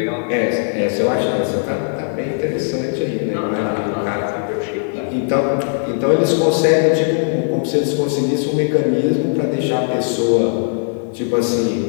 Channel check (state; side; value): silent; right; 60 dB below the other